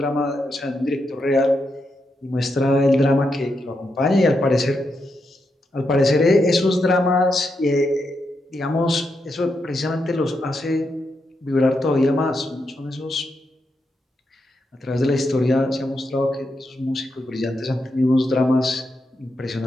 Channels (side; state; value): both; normal; correlation 0.84